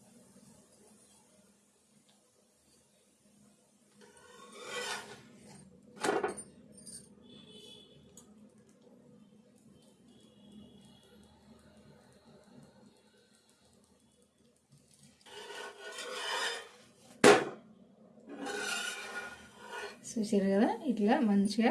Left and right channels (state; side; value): identical; both; correlation 1.00